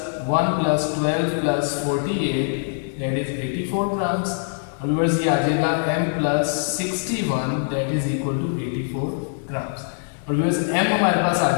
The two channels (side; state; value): right; silent; digital silence